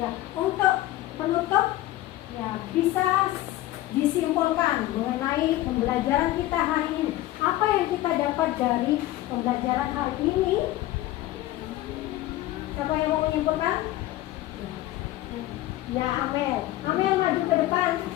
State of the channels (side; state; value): right; quieter; 15.7 dB